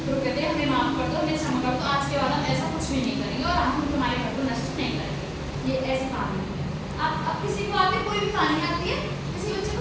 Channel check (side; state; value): both; identical; correlation 1.00